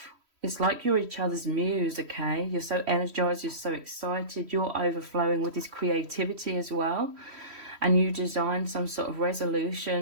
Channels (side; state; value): left; late; 3.1 ms